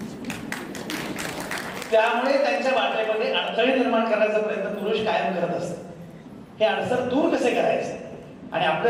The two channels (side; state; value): both; identical; correlation 1.00